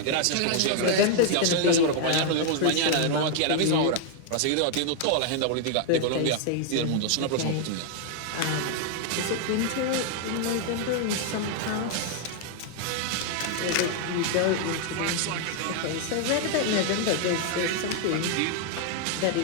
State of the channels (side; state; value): both; different; correlation 0.00